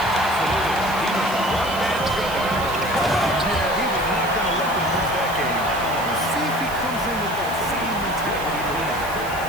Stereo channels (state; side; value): noise; right; hiss, 14 dB below the sound